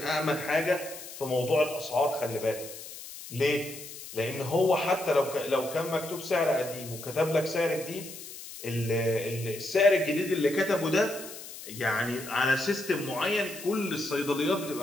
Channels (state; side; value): noise; left; hiss, 13 dB below the sound